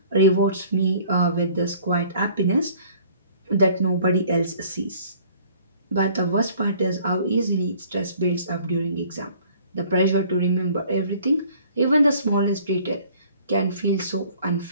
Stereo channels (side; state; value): both; inverted; correlation -0.55